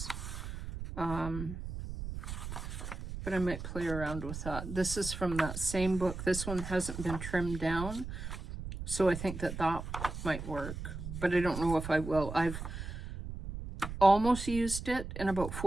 But but I might play around with that. This is from that same book. This one hasn't been trimmed down, so I think that that might work, but I don't know if I will. I've almost used it in about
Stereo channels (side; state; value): right; noise; rumble, 7 dB below the sound